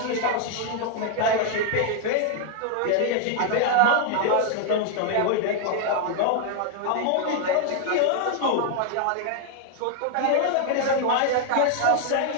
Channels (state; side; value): different; both; correlation 0.00